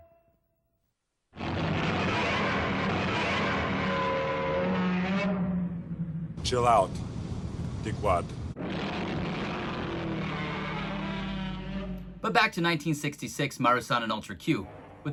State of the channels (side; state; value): both; identical; correlation 1.00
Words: Chill out, dickwad. But back to 1966 Marusan and Ultra Q. With